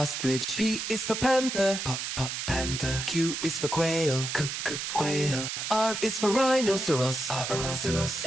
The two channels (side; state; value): right; noise; hiss, 4 dB below the sound